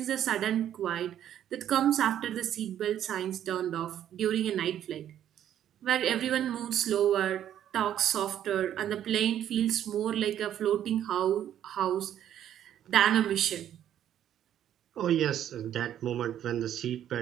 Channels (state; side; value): quieter; left; 10.7 dB